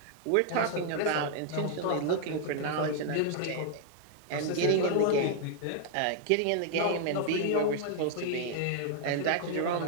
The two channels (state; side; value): different; both; correlation 0.00